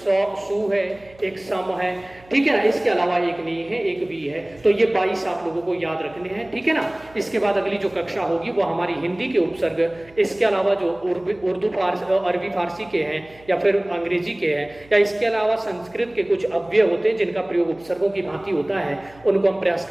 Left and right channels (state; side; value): noise; right; hum, 26 dB below the sound